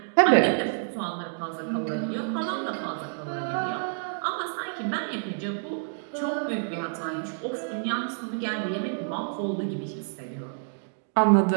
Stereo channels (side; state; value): left; silent; digital silence